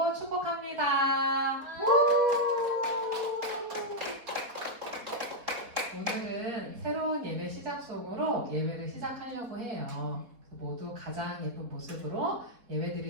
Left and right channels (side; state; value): left; late; 4.1 ms